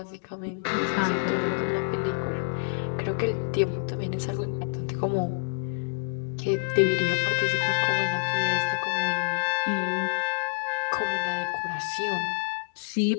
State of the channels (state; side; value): silent; right; digital silence